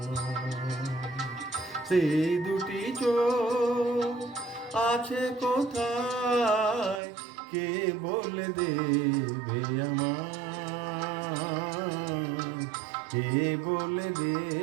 সেই দুটি চোখ আছে কোথায়, কে বলে দেবে আমায়, কে বলে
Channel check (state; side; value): drops out; left; at 7.0 s